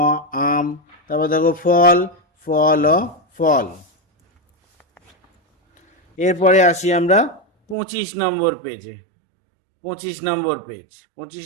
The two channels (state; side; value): drops out; left; at 7.8 s